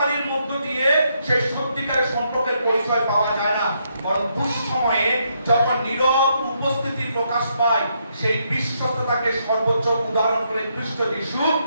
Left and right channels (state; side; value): inverted; both; correlation -0.76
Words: মধ্য দিয়ে সেই সত্যিকারের সম্পর্কের পরিচয় পাওয়া যায় না, বরং দুঃসময়ে যখন নীরব উপস্থিতি প্রকাশ পায়, সেই বিশ্বস্ততাকে সর্বোচ্চ উদাহরণ করে খ্রিস্ট যিশু,